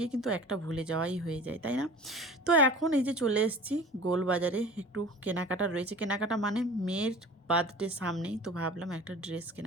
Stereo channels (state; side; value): normal; both; correlation 0.41